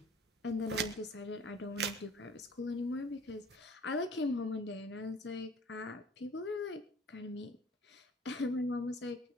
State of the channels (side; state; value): both; normal; correlation 0.49